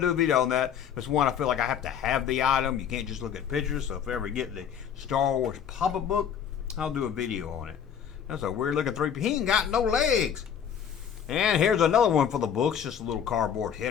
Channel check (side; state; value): right; quieter; 8.3 dB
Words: to do a video on that. It's one I feel like I have to have the item. You can't just look at pictures. So if I ever get the Star Wars pop-up book, I'll do a video on it. That's a weird looking 3PO. He ain't got no legs. And here's another one for the books. Just a little cardboard